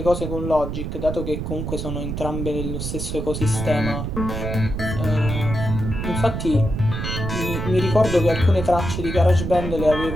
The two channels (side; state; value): right; noise; rumble, 4 dB below the sound